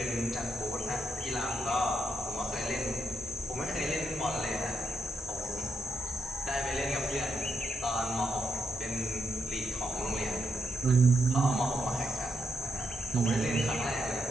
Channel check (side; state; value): both; normal; correlation 0.80